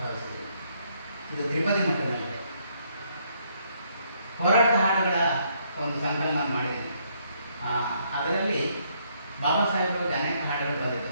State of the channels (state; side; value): inverted; both; correlation -0.71